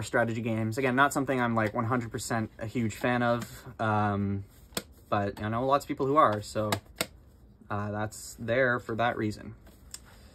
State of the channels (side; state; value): both; identical; correlation 1.00